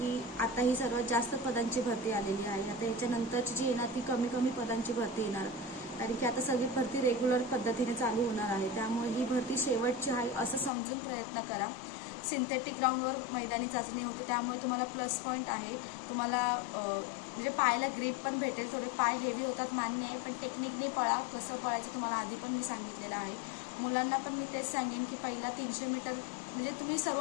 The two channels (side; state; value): right; drops out; at 10.7 s